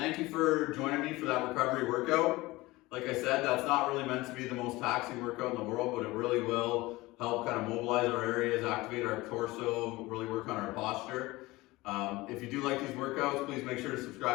you for joining me for that recovery workout. Like I said, that's not really meant to be the most taxing workout in the world, but it really will help kind of mobilize our areas, activate our torso, really work on our posture. If you do like these workouts, please make sure to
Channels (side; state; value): right; quieter; 20.4 dB